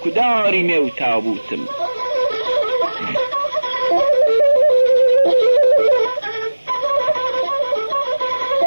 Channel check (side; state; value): both; inverted; correlation -1.00